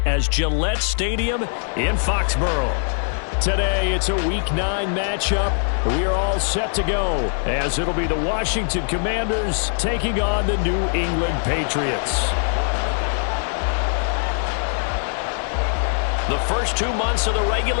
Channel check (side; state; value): right; silent; digital silence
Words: as Gillette Stadium in Foxborough. Today, it's a Week 9 matchup. We are all set to go, as it'll be the Washington Commanders taking on the New England Patriots. The first 2 months of the